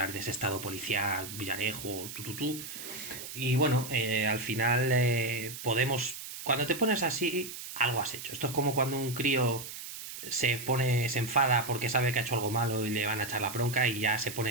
de ese Estado policial, Villarejo, tututú. Y bueno, al final Podemos, cuando te pones así, algo has hecho. Esto es como cuando un crío se enfada porque sabe que ha hecho algo malo y le van a echar la bronca y ya se pone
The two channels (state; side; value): noise; right; hiss, 10 dB below the sound